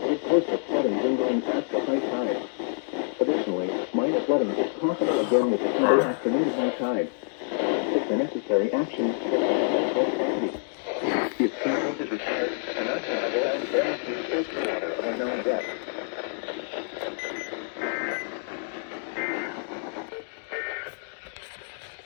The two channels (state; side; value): silent; right; digital silence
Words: coastal flooding lingering past the high tide. Additionally, minor flooding is possible again with the Sunday afternoon high tide. Take the necessary action to protect both properties. If teamwork is required, an untenable and guaranteed safe water of unknown depth.